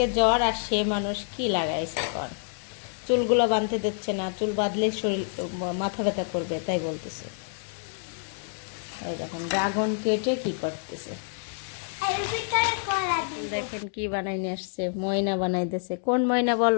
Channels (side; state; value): right; silent; digital silence